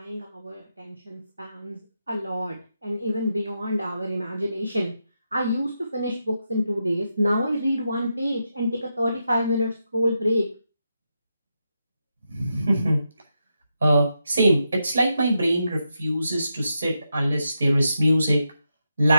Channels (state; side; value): inverted; both; correlation -0.85